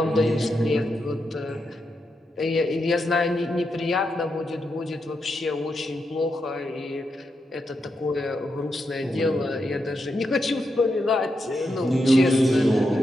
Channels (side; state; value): both; normal; correlation 0.84